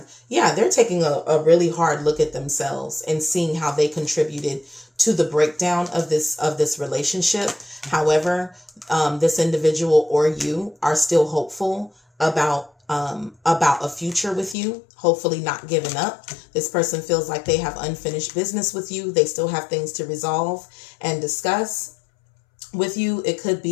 Yeah, they're taking a really hard look at themselves and seeing how they contributed to the breakdown of this relationship. However, this individual or you are still hopeful about a future with you, hopefully not giving up. This person feels like they have unfinished business with you. They still have things to resolve and discuss with you. It could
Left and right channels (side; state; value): right; drops out; at 14.6 s